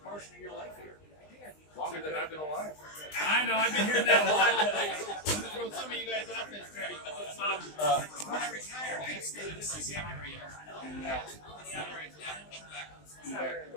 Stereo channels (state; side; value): late; right; 20 ms